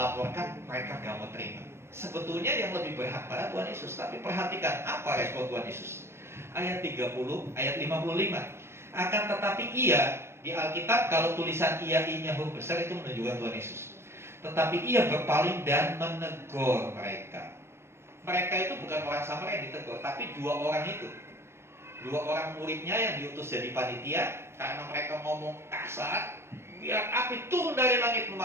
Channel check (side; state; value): left; late; 0.12 ms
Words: mereka gak mau terima. Sebetulnya yang lebih berhak pada Tuhan Yesus. Tapi perhatikan apa respon Tuhan Yesus. Ayat 30, ayat 55. Akan tetapi ia, di Alkitab kalau tulisan ia i-nya huruf besar itu menunjukkan Tuhan Yesus. Tetapi ia berpaling dan menegur mereka. Mereka itu bukan orang Samaria yang ditegur, tapi dua orang itu. Dua orang muridnya yang diutus jadi panitia. Karena mereka ngomong kasar, biar api turun dari langit